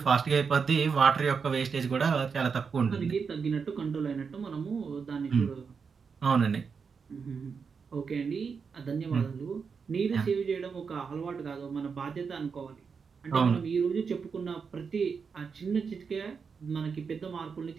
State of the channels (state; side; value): quieter; left; 5.7 dB